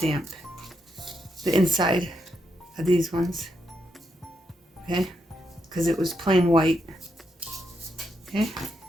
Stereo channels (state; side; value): normal; both; correlation 0.80